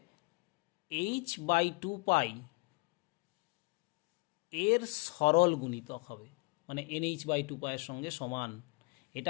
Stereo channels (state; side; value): quieter; right; 29.3 dB